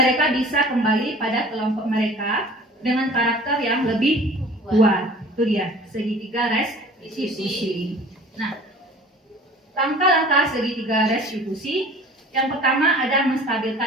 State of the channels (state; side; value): normal; both; correlation 0.46